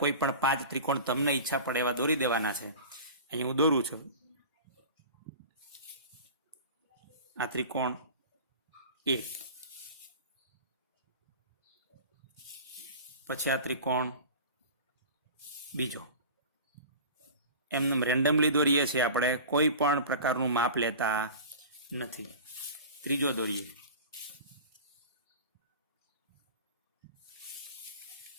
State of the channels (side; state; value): both; inverted; correlation -0.36